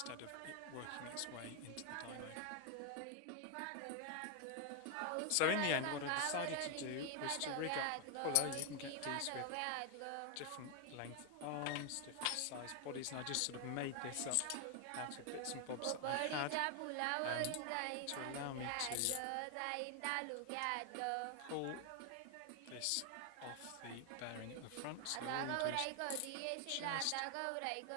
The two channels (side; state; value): both; different; correlation 0.01